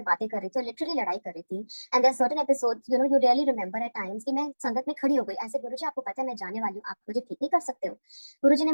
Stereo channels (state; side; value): inverted; both; correlation -1.00